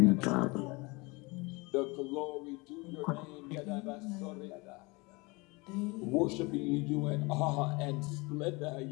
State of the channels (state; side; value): quieter; right; 26.1 dB